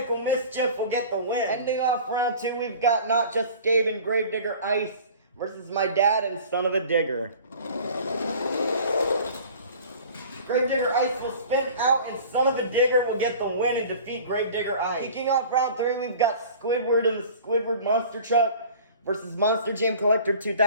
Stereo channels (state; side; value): inverted; both; correlation -0.43